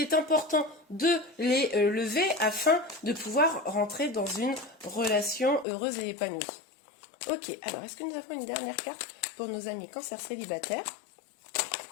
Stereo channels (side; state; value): right; drops out; at 5.7 s